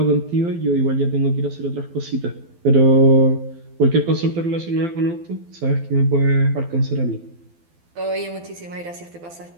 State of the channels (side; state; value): left; late; 12 ms